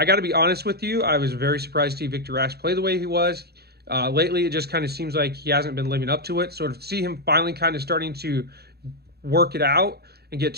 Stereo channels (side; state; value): left; late; 0.46 ms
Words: got to be honest with you, I was very surprised to see Victor Rask play the way he was. Lately, it just kind of seems like he hasn't been living up to it. So to see him finally kind of starting to work it out and get